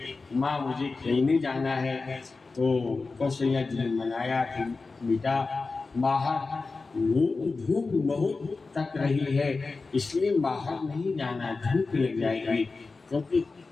माँ मुझे खेलने जाना है। तो कौशल्या जी ने मनाया कि बेटा बाहर धूप बहुत तक रही है, इसलिए बाहर नहीं जाना, धूप लग जाएगी, क्योंकि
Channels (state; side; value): quieter; right; 4.0 dB